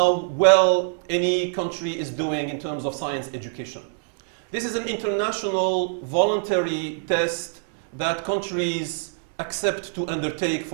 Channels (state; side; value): silent; left; digital silence